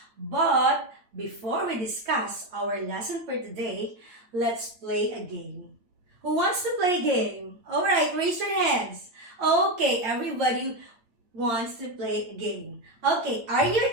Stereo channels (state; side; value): late; left; 8.9 ms